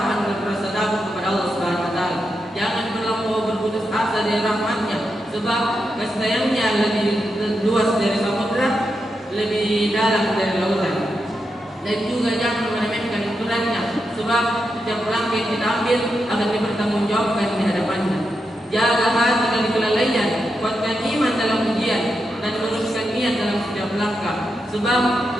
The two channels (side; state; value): both; normal; correlation 0.86